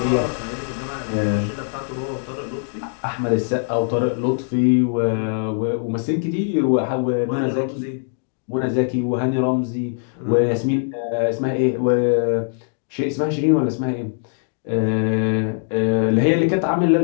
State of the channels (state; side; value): silent; right; digital silence